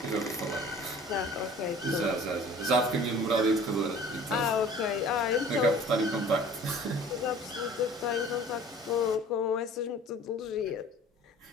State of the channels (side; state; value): both; normal; correlation 0.47